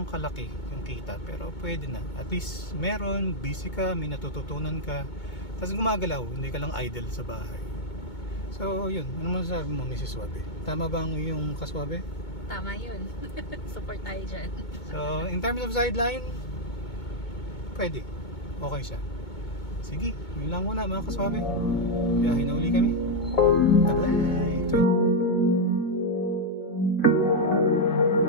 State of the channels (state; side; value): late; right; 2.2 ms